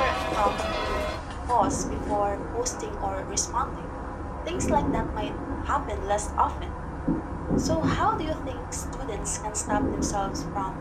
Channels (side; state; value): both; identical; correlation 1.00